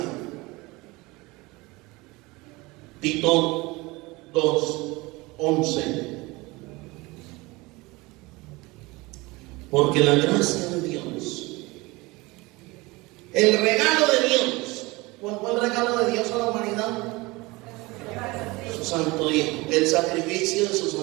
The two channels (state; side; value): quieter; left; 23.0 dB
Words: Tito 2:11. Porque la gracia de Dios, el regalo de Dios, ¿cuál fue el regalo de Dios a la humanidad? Su santo Hijo, el sacrificio de su